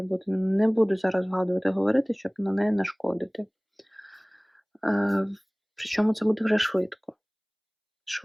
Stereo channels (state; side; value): identical; both; correlation 1.00